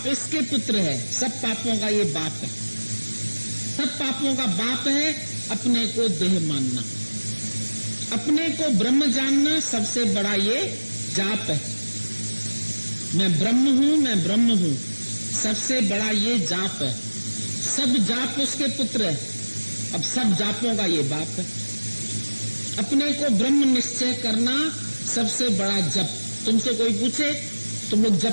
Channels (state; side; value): inverted; both; correlation -1.00